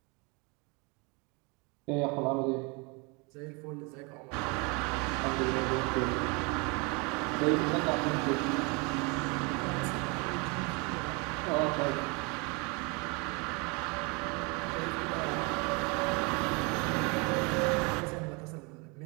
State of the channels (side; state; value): left; quieter; 30.0 dB